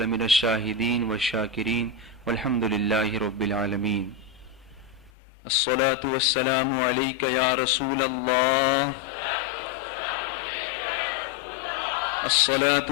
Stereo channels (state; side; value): drops out; right; at 5.1 s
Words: لمن الشاهدين والشاكرين والحمد لله رب العالمين. الصلاة والسلام عليك يا رسول الله، الصلاة